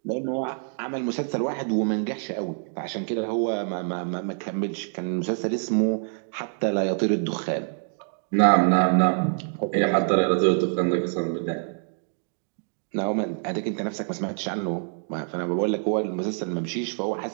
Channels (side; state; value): left; silent; 61 dB below the other